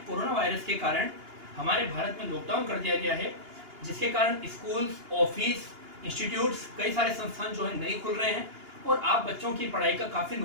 corona virus के कारण हमारे भारत में लॉकडाउन कर दिया गया है, जिसके कारण स्कूल्स, ऑफिस, इंस्टीट्यूट्स, कई सारे संस्थान जो है नहीं खुल रहे हैं और आप बच्चों की पढ़ाई का काफ़ी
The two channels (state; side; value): late; left; 2.8 ms